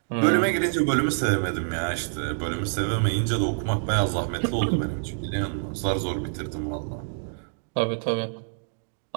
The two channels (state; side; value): silent; left; digital silence